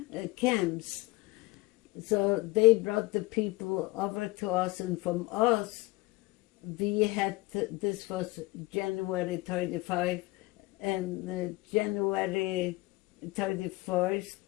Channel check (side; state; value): right; quieter; 22.4 dB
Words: camps. So they brought the people over to us, and from us, we had, this was January 35 and January 31st,